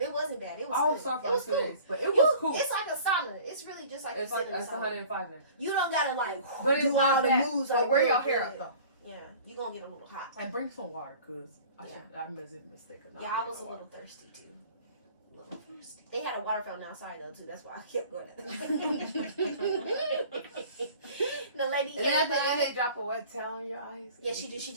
wasn't bad. It was. I was cool. sorry for It was 2 cool. days, but it was cool. It's like a sauna. It's really just like It's you like sit in a it's sauna. 105 now. You don't gotta like But it's do not all the bad. moves. But like, wear real your hair good. up though. Yeah, you gonna get a little hot. And bring some water, cause I made a mistake. Yeah, I was a little thirsty too. They had a water fountain outside though too. That's why I kept going. The lady And then at came the end, by. they drop a wet towel on your eyes. Yeah, she did. She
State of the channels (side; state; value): both; inverted; correlation -0.46